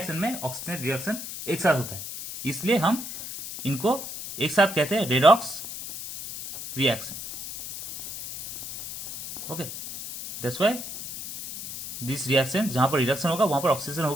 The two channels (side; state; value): left; noise; hiss, 9 dB below the sound